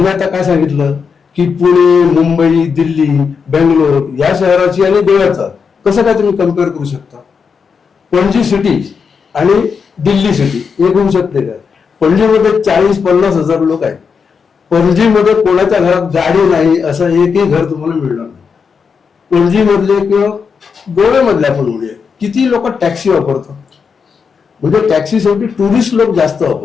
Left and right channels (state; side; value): quieter; right; 5.9 dB